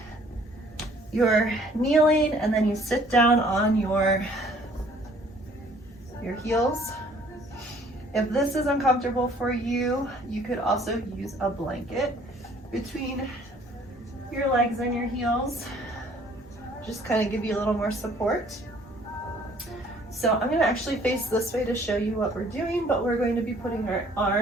you're kneeling and then you sit down on your heels. If this is uncomfortable for you, you could also use a blanket between your legs and your heels. Just kind of give you a little more support. So I'm going to actually face this way to show you what we're doing, but we're going to be putting our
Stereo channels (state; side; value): normal; both; correlation 0.58